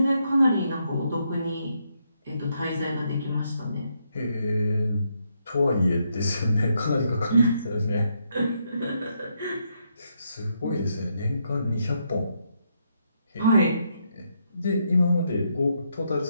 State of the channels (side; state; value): both; inverted; correlation -0.77